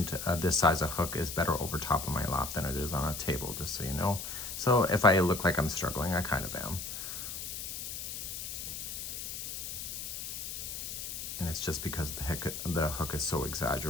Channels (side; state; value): left; noise; hiss, 6 dB below the sound